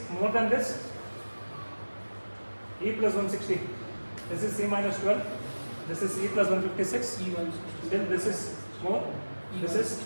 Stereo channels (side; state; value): both; inverted; correlation -1.00